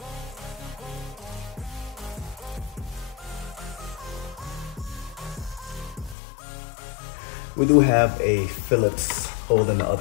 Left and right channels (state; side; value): drops out; right; at 6.2 s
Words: We do have a Phillips hole in the